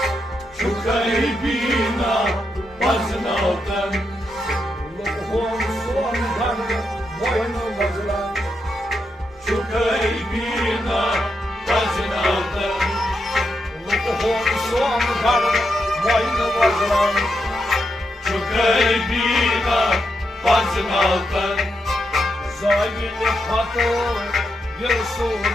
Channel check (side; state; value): both; normal; correlation 0.83